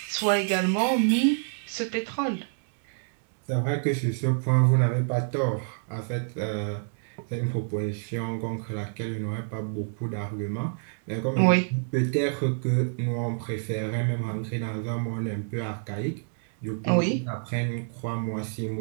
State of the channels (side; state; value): left; silent; digital silence